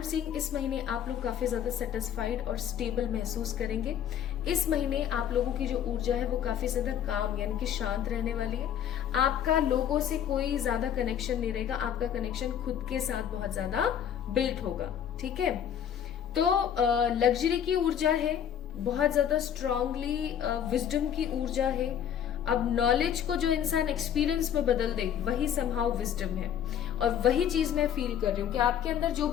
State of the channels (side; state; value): right; quieter; 9.3 dB